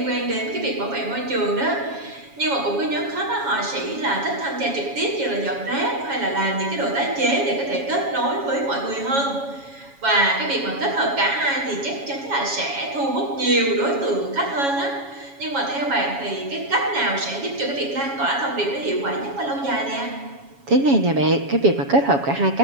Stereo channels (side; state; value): left; late; 7.2 ms